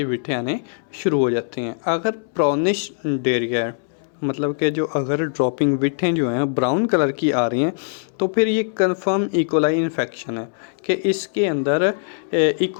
विठें आने शुरू हो जाती हैं। अगर ब्राउनिश डेरिया, मतलब कि जो अगर ड्रॉपिंग विठें जो हैं ब्राउन कलर की आ रही हैं, तो फिर ये कंफर्म इकोलाई इन्फेक्शन है कि इसके अंदर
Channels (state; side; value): silent; right; 65 dB below the other